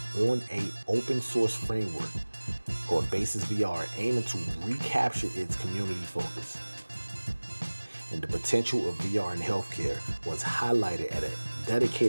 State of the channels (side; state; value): both; inverted; correlation -1.00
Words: on an open source framework called Basis VR, aiming to recapture its community focus. And the potential of VR in healthcare was highlighted at a